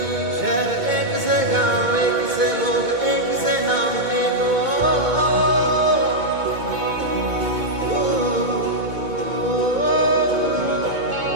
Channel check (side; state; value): left; late; 2.2 ms